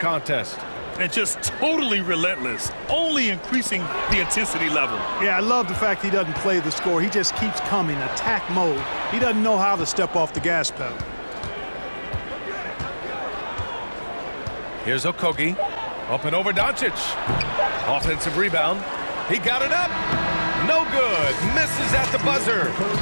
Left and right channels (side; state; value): both; inverted; correlation -1.00